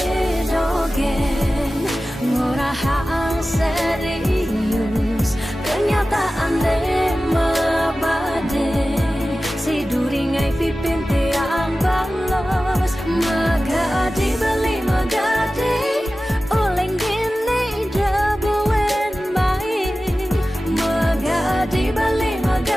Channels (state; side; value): normal; both; correlation 0.95